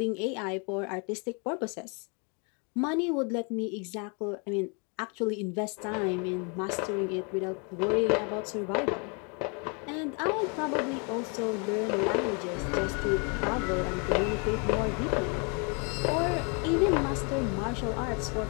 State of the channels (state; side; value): quieter; right; 35.0 dB